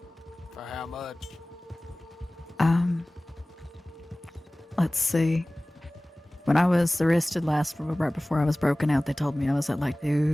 For how much? Let's see. When I was arrested last, right before I was broken out, they told me I was at like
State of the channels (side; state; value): both; normal; correlation 0.98